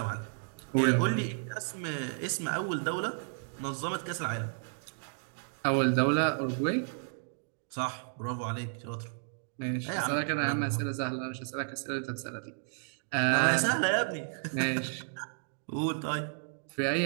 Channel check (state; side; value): silent; left; digital silence